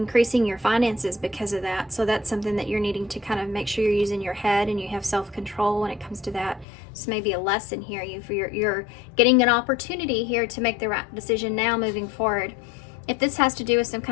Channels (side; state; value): right; drops out; at 6.7 s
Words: your finances because of that. So that's something that you're needing to kind of make sure you're using your head and you have self-control when it comes to that. So maybe a lesson here. You're getting an opportunity here to make the right decision now moving forward. If this has to do with some